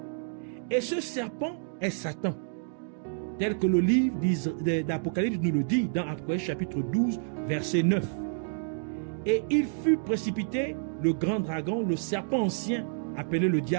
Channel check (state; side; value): silent; left; digital silence